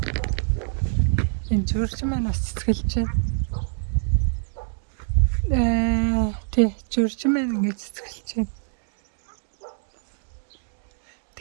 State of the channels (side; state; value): left; silent; 59 dB below the other